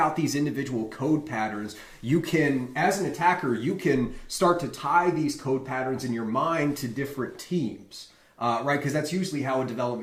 these individual code patterns, you can, as an attacker, you can start to tie these code patterns in your mind to different teams, right? Because that's usually how a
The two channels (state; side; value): identical; both; correlation 1.00